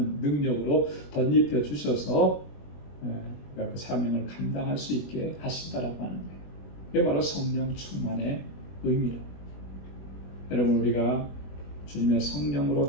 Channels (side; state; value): right; late; 21 ms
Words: 능력으로 덧입혀 주셔서 그 사명을 감당할 수 있게 하신다라고 하는 거예요. 이게 바로 성령 충만의 의미라. 여러분, 우리가 주님의